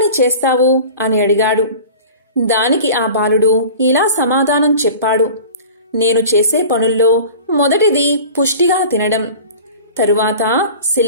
చేస్తావు అని అడిగాడు. దానికి ఆ బాలుడు ఇలా సమాధానం చెప్పాడు, నేను చేసే పనుల్లో మొదటిది పుష్టిగా తినడం, తరువాత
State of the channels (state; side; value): inverted; both; correlation -0.39